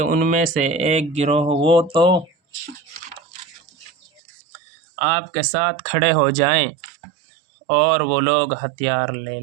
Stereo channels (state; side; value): drops out; left; at 4.2 s